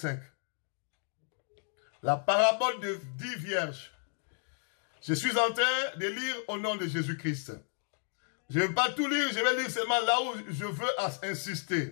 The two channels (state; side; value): silent; right; 56 dB below the other